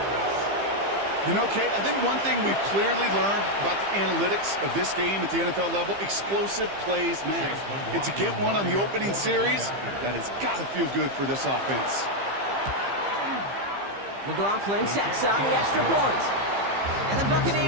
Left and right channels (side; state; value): left; late; 15 ms